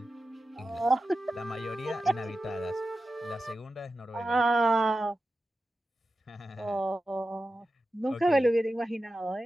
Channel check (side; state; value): both; normal; correlation 0.92